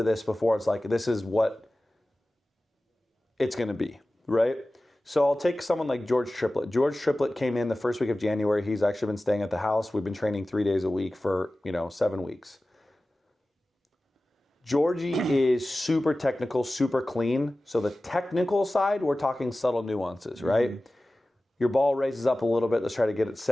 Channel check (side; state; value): both; normal; correlation 0.96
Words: this before it's like, this is what it's going to be, right? So I'll take someone like George Triplett. George Triplett came in the first week of January. He's actually been staying at the house. We've been training 3 days a week for, 7 weeks. Georgie is super technical, super clean. So the technical side, we're talking subtle nuances, right? Your ball raises up a little bit. Let's try to get it